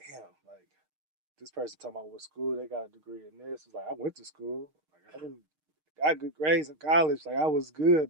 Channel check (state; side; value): late; left; 6.5 ms